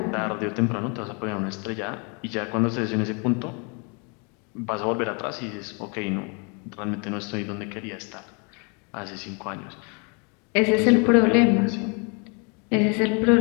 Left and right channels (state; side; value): quieter; right; 34.0 dB